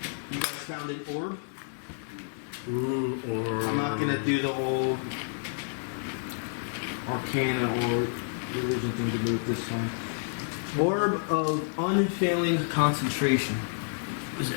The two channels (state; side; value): silent; right; digital silence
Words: You guys found an orb. Ooh, or I'm not going to do the whole Arcana or religion thing to do with this time. Orb of unfailing concentration. What does